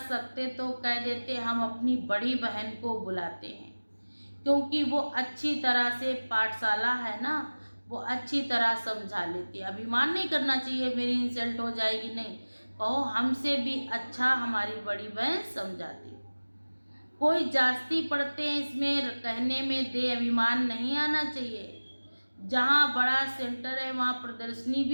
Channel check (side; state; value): both; inverted; correlation -1.00